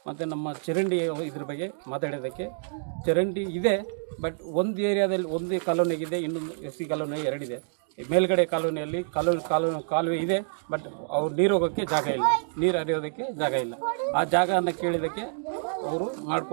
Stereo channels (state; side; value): silent; left; digital silence